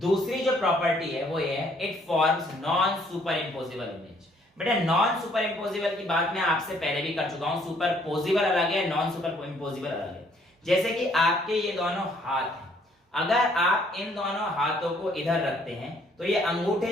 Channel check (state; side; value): normal; both; correlation 0.64